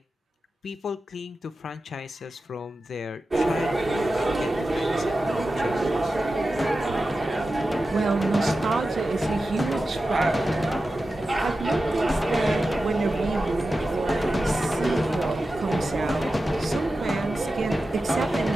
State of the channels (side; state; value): both; normal; correlation 0.93